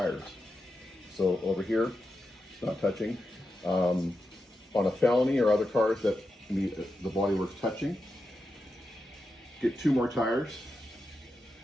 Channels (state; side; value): normal; both; correlation 0.88